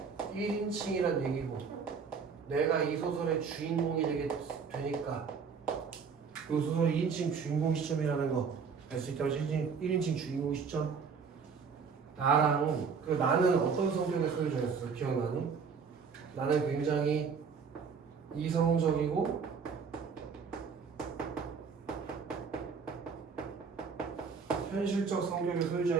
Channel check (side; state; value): left; quieter; 5.9 dB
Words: 1인칭이란 얘기고, 내가 이 소설의 주인공이 되니까 이 소설의 2인칭 주인공 시점이라는 거 알 수 있다고. 1인칭 주인공 시점. 나랑 그 나는 어떤 성격의 소유자였어? 기억나니? 나는 굉장히 이성적이고 현실적 성격의